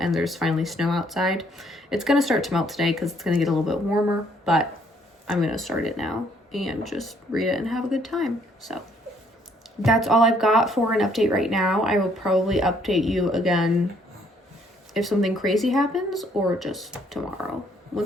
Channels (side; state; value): both; normal; correlation 0.65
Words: and there's finally snow outside. It's going to start to melt today because it's going to get a little bit warmer, but I'm going to start it now and just read it and have a good time. So that's all I've got for an update right now. I will probably update you again if something crazy happens, or just tomorrow